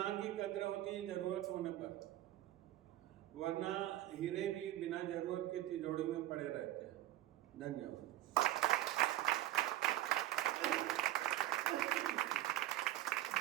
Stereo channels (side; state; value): left; quieter; 14.6 dB